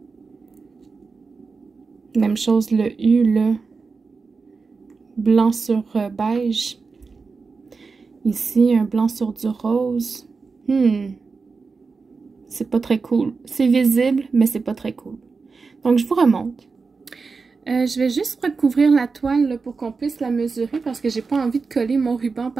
Même chose le U là. Blanc sur beige. Ici, un blanc sur du rose. C'est pas très cool. C'est visible, mais c'est pas très cool. Donc, je vous remonte. Je vais juste recouvrir la toile là, pour qu'on puisse la mesurer parce que j'ai pas envie de coller mon ruban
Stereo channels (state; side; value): quieter; left; 4.6 dB